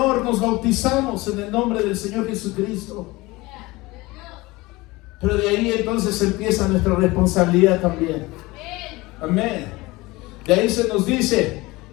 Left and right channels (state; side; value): quieter; right; 21.4 dB